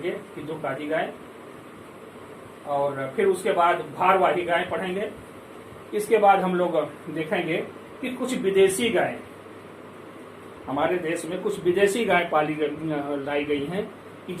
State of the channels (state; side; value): identical; both; correlation 1.00